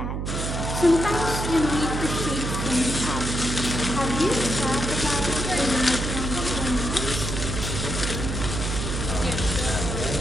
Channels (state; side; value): noise; right; hum, 3 dB below the sound